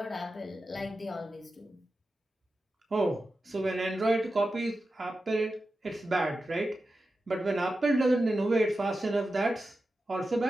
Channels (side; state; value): both; normal; correlation 0.92